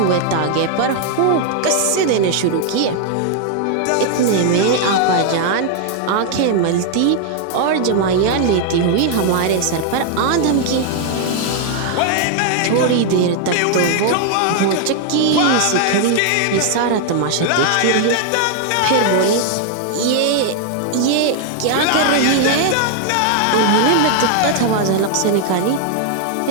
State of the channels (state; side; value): different; both; correlation 0.00